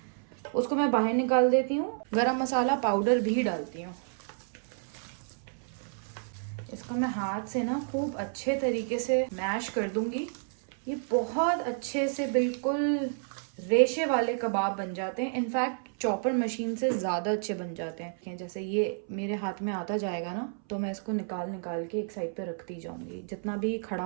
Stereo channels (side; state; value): left; silent; 58 dB below the other